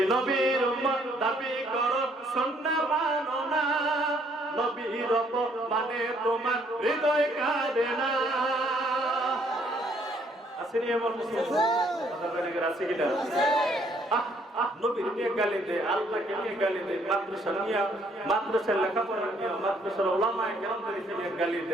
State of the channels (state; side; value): normal; both; correlation 0.66